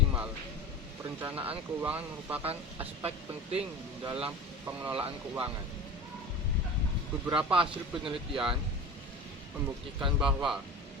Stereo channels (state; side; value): normal; both; correlation 0.33